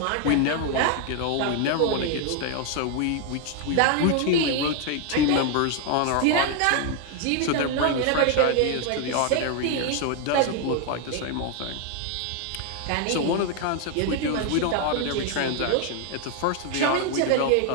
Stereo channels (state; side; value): different; both; correlation 0.01